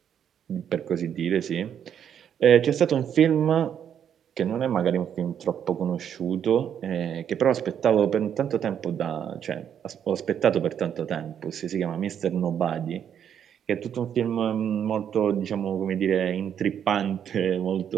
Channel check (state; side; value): quieter; left; 8.8 dB